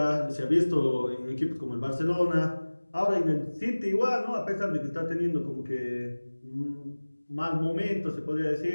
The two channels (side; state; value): both; inverted; correlation -1.00